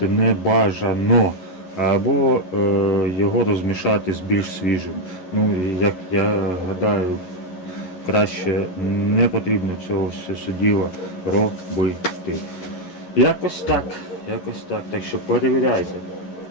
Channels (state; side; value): late; right; 11 ms